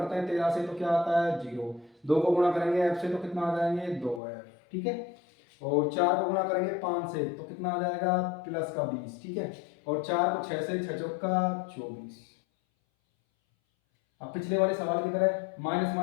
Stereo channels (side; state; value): right; drops out; at 4.2 s